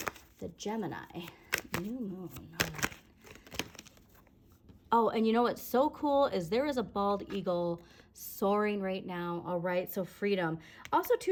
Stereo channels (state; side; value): identical; both; correlation 1.00